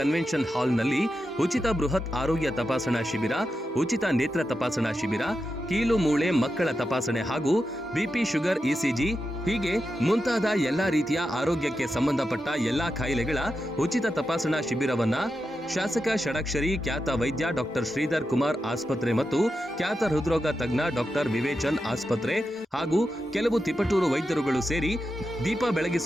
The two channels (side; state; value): both; normal; correlation 0.88